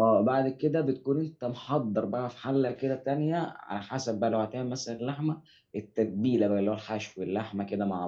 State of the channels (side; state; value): both; identical; correlation 1.00